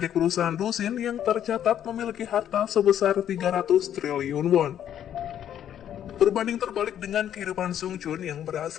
perusahaan Dusin yang tercatat memiliki harta sebesar 300 triliun won. Berbanding terbalik dengan kehidupan Sung Chun yang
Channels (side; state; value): right; quieter; 10.2 dB